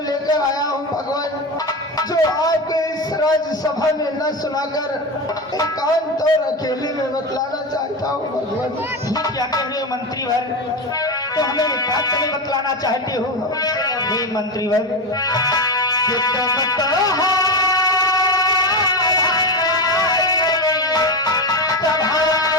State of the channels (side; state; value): both; normal; correlation 0.17